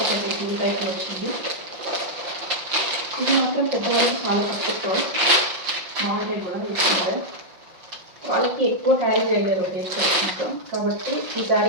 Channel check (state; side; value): late; left; 5.7 ms